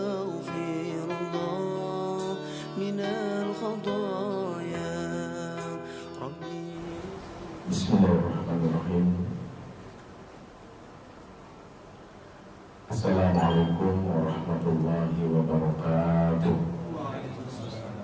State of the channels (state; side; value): identical; both; correlation 1.00